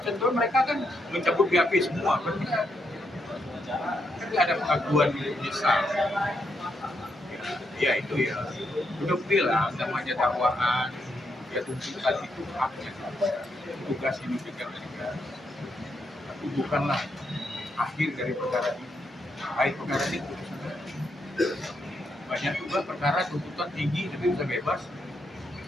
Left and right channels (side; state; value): both; normal; correlation 0.79